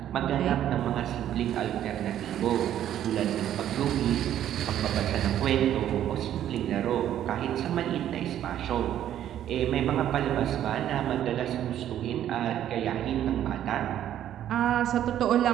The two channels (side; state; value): left; quieter; 11.2 dB